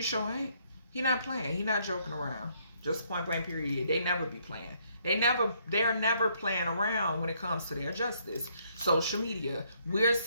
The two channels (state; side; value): inverted; both; correlation -0.69